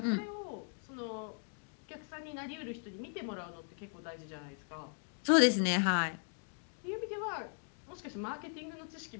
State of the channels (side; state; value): right; silent; 52 dB below the other